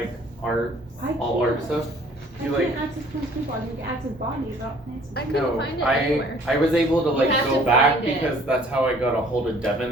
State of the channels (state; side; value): normal; both; correlation 0.55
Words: art, all art stuff. I You can't like access plants people, I can access bodies, not plants. I couldn't no, find it anywhere. I was able to like have go to back find it. because that's how I got a hold of Devin